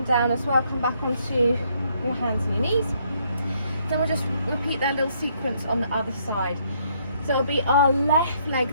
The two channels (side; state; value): both; inverted; correlation -0.69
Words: down as well. Come back onto your hands and your knees. Then we'll just repeat that little sequence on the other side. So it'll be our left leg